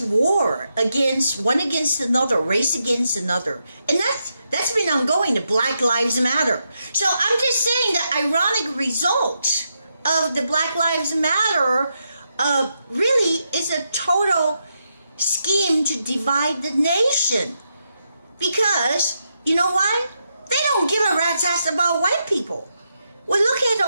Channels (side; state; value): both; inverted; correlation -0.83